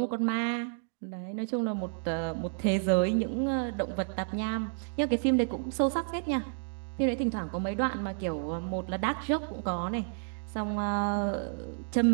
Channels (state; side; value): silent; left; digital silence